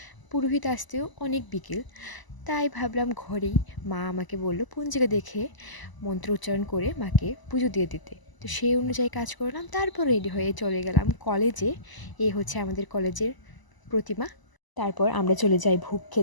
পুরোহিত আসতেও অনেক বিকেল। তাই ভাবলাম ঘরেই, মা আমাকে বলল পঞ্জিকা দেখে মন্ত্র উচ্চারণ করে মাকে পুজো দিয়ে দিতে। তো সেই অনুযায়ী কাজ করলাম, তারপর রেডি হয়ে চলে গেলাম কলেজে। এই হচ্ছে আমাদের কলেজের প্রতিমা। তারপর আমরা চলে যাই ভোগ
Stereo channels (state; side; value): late; right; 1.0 ms